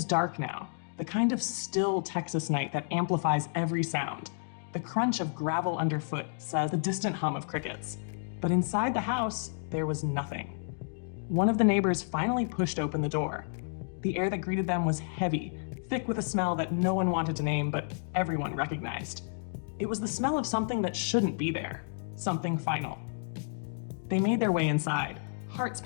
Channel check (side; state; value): right; silent; digital silence